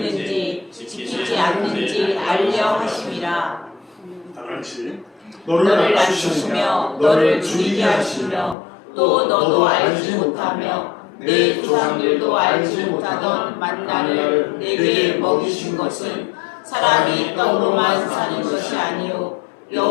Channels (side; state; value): right; drops out; at 8.6 s